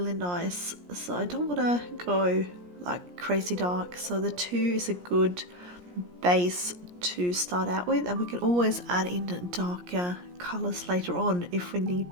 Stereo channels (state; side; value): late; left; 17 ms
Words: nice. So I don't want to go like crazy dark, so the 2 is a good base to start out with, and we can always add in darker colors later on if we need